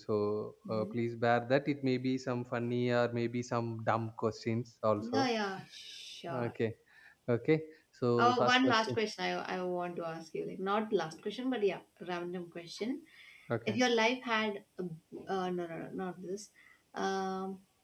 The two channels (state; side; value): identical; both; correlation 1.00